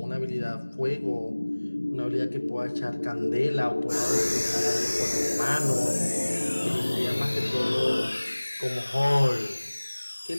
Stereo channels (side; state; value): both; inverted; correlation -1.00